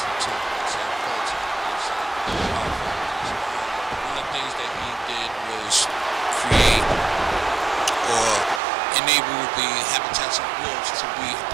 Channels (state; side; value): drops out; left; at 8.6 s